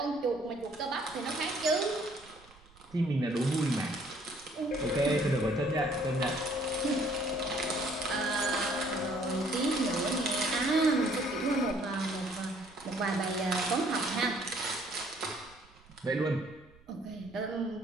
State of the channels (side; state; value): right; noise; rumble, 26 dB below the sound